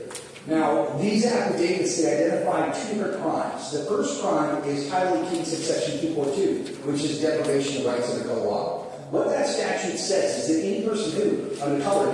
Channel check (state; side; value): identical; both; correlation 1.00